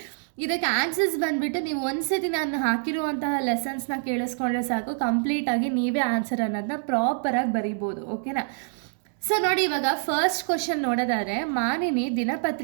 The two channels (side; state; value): left; silent; digital silence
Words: ಇದಕ್ಕೆ ಆನ್ಸರ್ಸ್ ಬಂದುಬಿಟ್ಟು ನೀವು ಒಂದ್ಸತಿ ನಾನು ಹಾಕಿರುವಂತಹ ಲೆಸನ್ಸ್ನ ಕೇಳಿಸ್ಕೊಂಡ್ರೆ ಸಾಕು, ಕಂಪ್ಲೀಟಾಗಿ ನೀವೇ ಆನ್ಸರ್ ಅನ್ನೋದನ್ನ ಪ್ರಾಪರಾಗಿ ಬರಿಬೋದು, ಓಕೆನಾ. ಸೊ ನೋಡಿ, ಇವಾಗ ಫಸ್ಟ್ ಕ್ವಶನ್ ನೋಡೋದಾದರೆ, ಮಾನಿನಿ